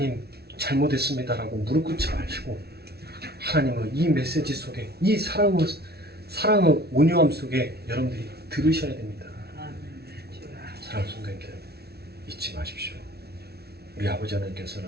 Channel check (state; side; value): late; left; 0.46 ms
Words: 잘못했습니다라고 무릎 꿇지 마시고 하나님의 이 메시지 속에 이 사랑의 온유함 속에 여러분들이 들으셔야 됩니다. 사랑하는 성도님들 잊지 마십시오. 우리 아버지